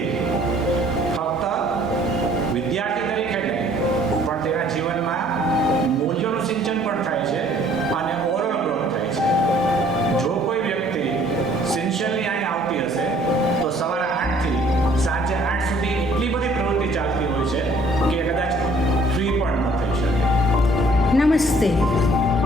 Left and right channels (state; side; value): normal; both; correlation 0.58